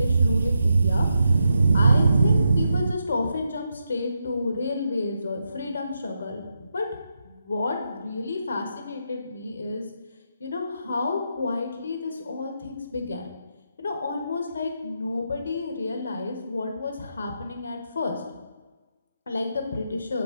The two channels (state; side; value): inverted; both; correlation -0.84